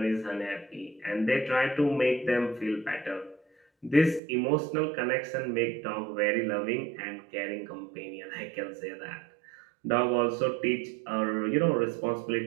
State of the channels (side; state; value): left; drops out; at 4.2 s